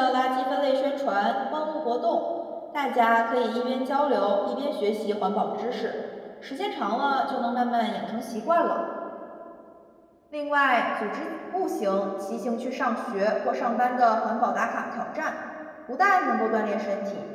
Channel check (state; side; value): identical; both; correlation 1.00